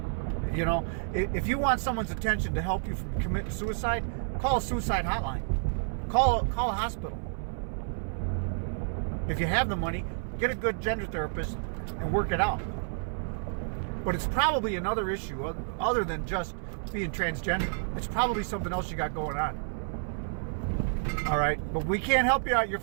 If you want someone's attention to help you from committing suicide, call a suicide hotline. Call a hospital. If you have the money, get a good gender therapist and work it out. But it's probably another issue other than just being transgender. It's probably something else you got going on. All right? But we can't help you out. Your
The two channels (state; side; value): silent; left; 58 dB below the other